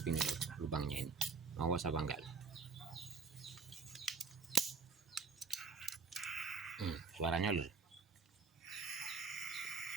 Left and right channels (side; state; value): left; quieter; 5.1 dB